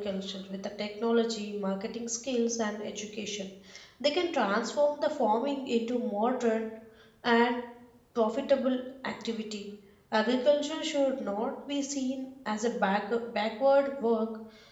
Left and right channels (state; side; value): identical; both; correlation 1.00